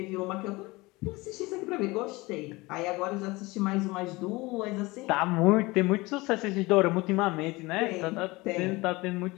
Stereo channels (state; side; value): quieter; right; 22.5 dB